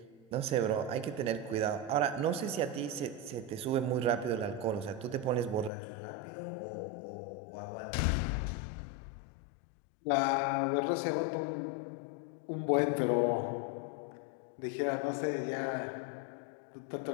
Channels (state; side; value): drops out; right; at 5.7 s